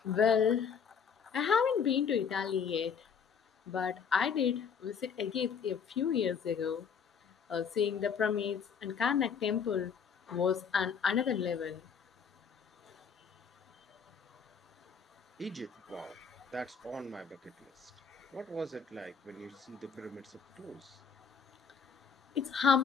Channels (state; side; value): quieter; right; 6.5 dB